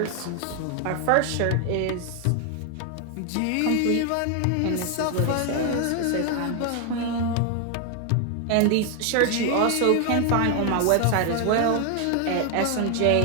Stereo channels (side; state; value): both; different; correlation 0.00